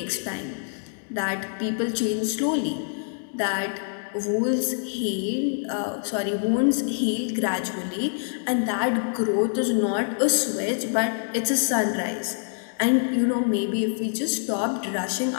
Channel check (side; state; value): right; silent; digital silence